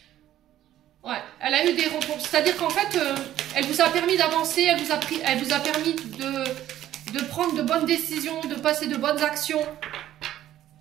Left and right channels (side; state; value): left; quieter; 12.7 dB